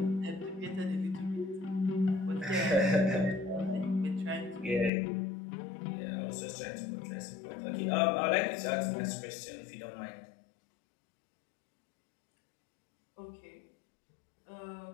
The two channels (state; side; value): drops out; right; at 4.9 s